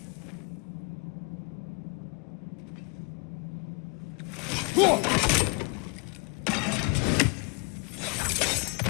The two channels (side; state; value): right; quieter; 33.3 dB